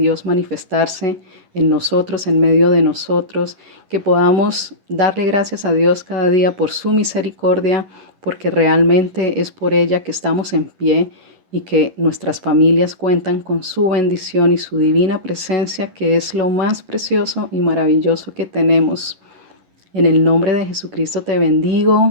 manifestarse en nosotros, en medio de nosotros, que podamos darle gracias a Dios cada día por su misericordia, porque realmente es por ella que estamos en pie y que nuestras familias cuentan con su bendición y su divina presencia, que es lo más precioso y maravilloso que tenemos. En el nombre de Jesucristo te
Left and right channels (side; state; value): left; late; 11 ms